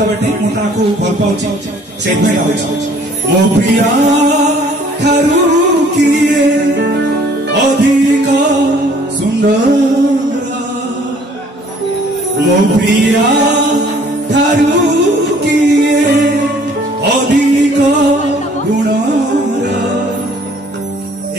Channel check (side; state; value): both; normal; correlation 0.57